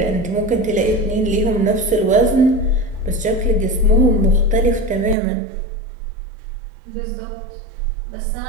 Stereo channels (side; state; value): left; drops out; at 5.2 s